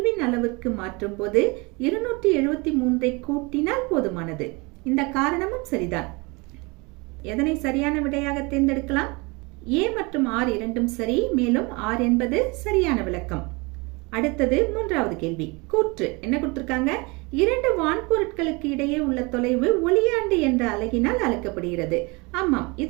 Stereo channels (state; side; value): quieter; left; 27.1 dB